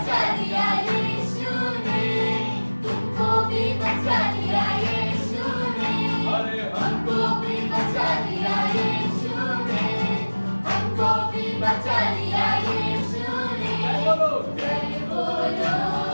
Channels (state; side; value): inverted; both; correlation -1.00